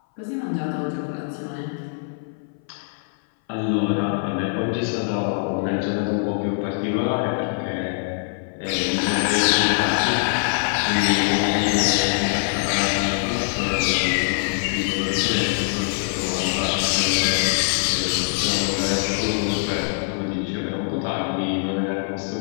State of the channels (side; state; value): right; silent; 59 dB below the other